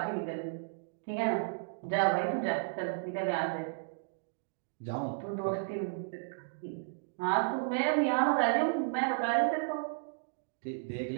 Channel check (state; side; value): silent; left; digital silence